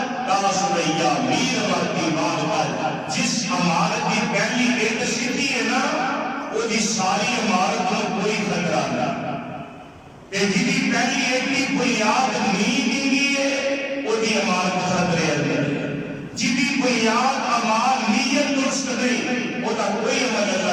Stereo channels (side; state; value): both; identical; correlation 1.00